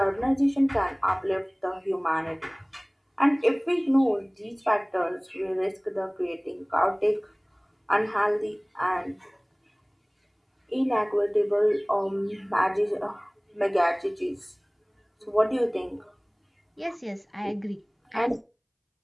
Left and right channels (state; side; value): identical; both; correlation 1.00